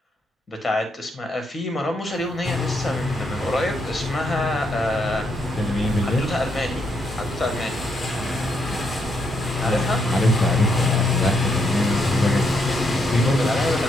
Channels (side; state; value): both; normal; correlation 0.77